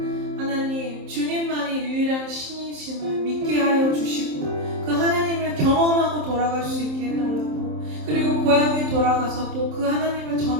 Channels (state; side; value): late; left; 27 ms